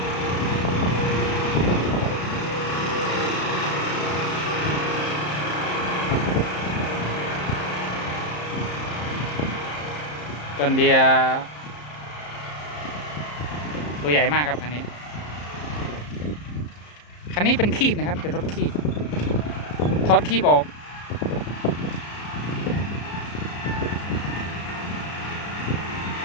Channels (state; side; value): late; right; 34 ms